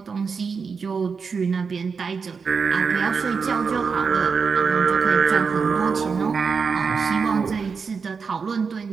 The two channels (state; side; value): quieter; left; 5.4 dB